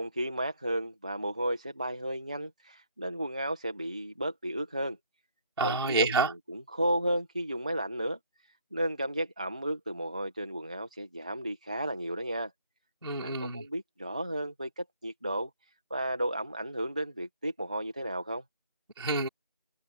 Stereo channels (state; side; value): inverted; both; correlation -0.65